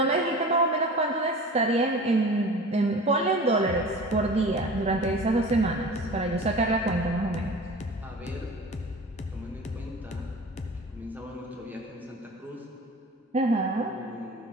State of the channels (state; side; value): normal; both; correlation 0.38